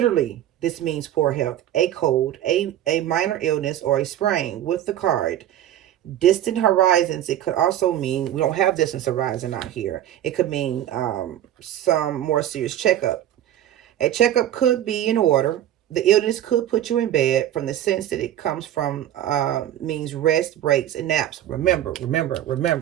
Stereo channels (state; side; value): quieter; left; 11.9 dB